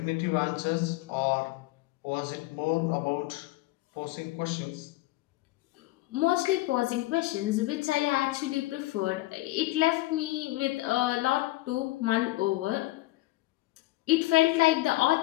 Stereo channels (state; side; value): quieter; right; 18.9 dB